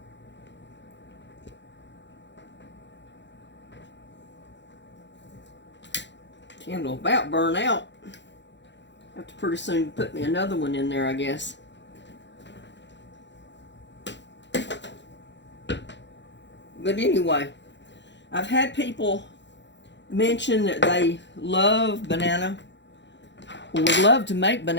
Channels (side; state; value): right; late; 0.52 ms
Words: Candle about burn out. Have to pretty soon put me another one in there, I guess. But anyway, I've had people mention that they love banana, or would love to make